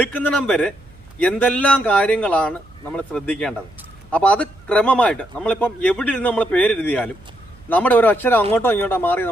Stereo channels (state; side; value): noise; right; hum, 25 dB below the sound